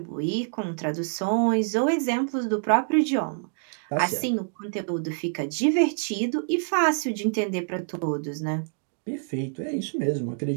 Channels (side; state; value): left; silent; digital silence